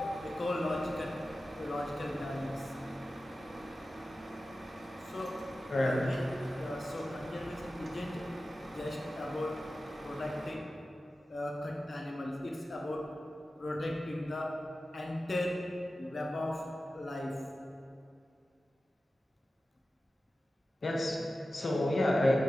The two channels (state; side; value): normal; both; correlation 0.94